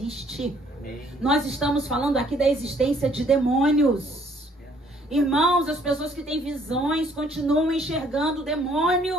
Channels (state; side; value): normal; both; correlation 0.63